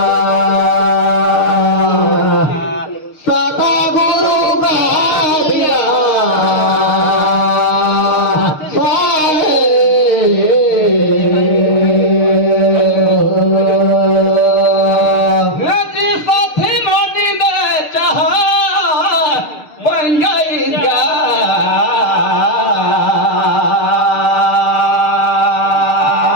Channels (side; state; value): right; late; 6.5 ms